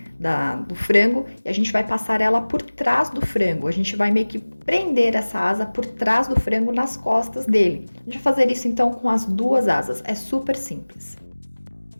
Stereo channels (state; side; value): inverted; both; correlation -1.00